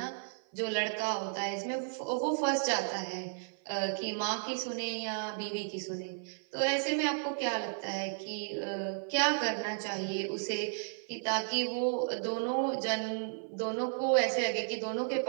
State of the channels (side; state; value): left; silent; 55 dB below the other